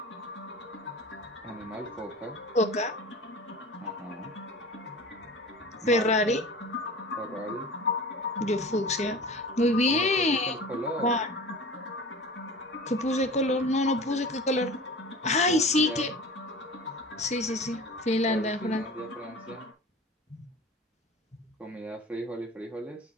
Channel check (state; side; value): normal; both; correlation 0.37